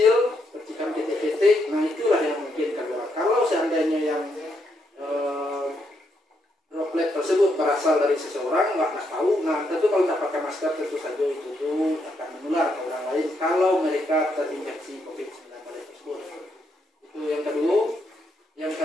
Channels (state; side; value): normal; both; correlation 0.78